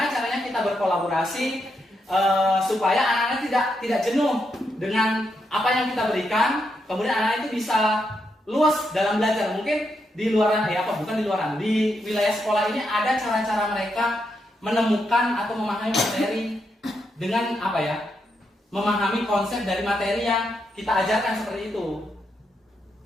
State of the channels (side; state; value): both; normal; correlation 0.81